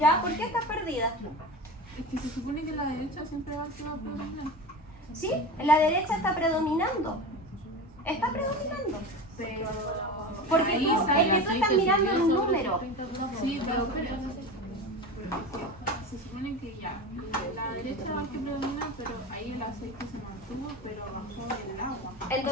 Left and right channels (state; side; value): normal; both; correlation 0.28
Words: ¿Por qué estás perdida? Es que se supone que la derecha siempre va a ser predominante. ¿Sí? La derecha está predominando. Está predominando. Pero. Porque ahí tú, sale es que tú aceite estás mirando subió el sobre número. 30%. Sí, pero se supone que ya. La derecha va a que predomina, pero ahí el aceite se mantuvo, pero bajó el agua.